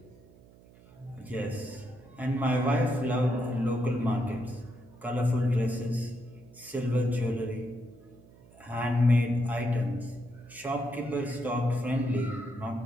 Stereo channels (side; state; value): right; noise; hum, 24 dB below the sound